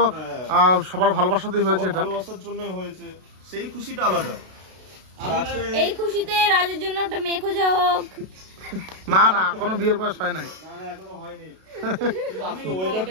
হ্যাঁ। সবার ভালোবাসাতেই হয়েছে সবার এটা। ভালোবাসার জন্যই হয়েছে, সেই খুশিটা আলাদা। আর আজকে এই খুশিতে রাজের জন্য একটা মেয়ে খোঁজা হোক। না না কোনো বিয়ের বয়স হয় নাই। না না এখনো হয়নি। আমি আজকে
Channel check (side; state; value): left; late; 32 ms